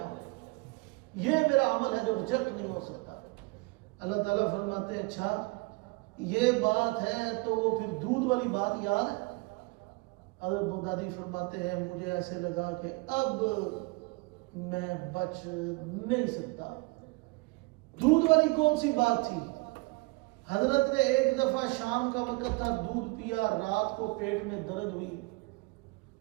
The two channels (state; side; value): quieter; left; 25.7 dB